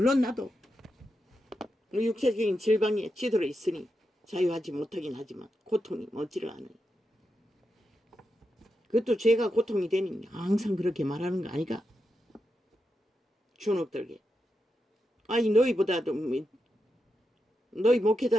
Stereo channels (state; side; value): normal; both; correlation 0.87